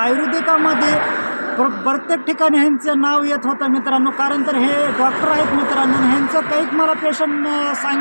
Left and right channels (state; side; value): inverted; both; correlation -1.00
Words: प्रत्येक ठिकाणी ह्यांचं नाव येत होतं मित्रांनो। कारण तर हे डॉक्टर आहेत मित्रांनो, ह्यांचं काही मला पेशंट